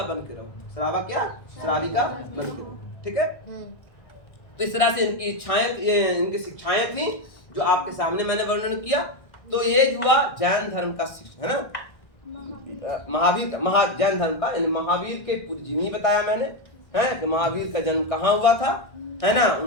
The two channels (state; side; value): late; right; 1.6 ms